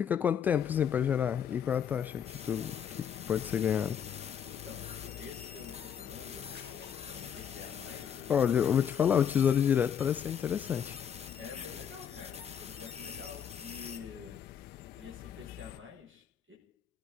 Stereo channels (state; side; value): quieter; right; 8.2 dB